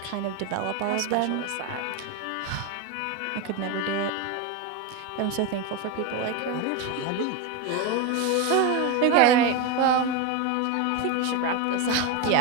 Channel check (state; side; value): different; both; correlation 0.03